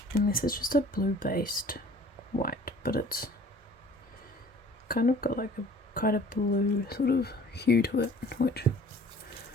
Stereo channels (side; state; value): both; normal; correlation 0.51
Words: and this is just a blue based white, but it's kind of got like a quite a blue sort of hue to it, which,